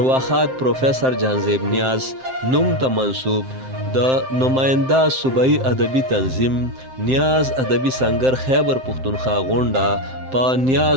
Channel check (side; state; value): left; late; 7.7 ms